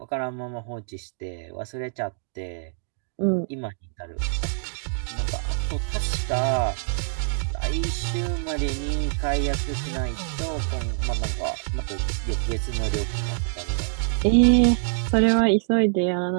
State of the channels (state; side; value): silent; left; digital silence